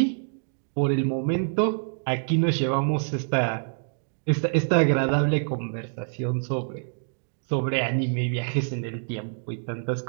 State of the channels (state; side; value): silent; left; 61 dB below the other